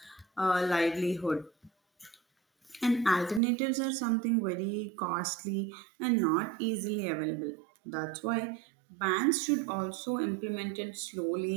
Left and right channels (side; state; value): left; drops out; at 3.4 s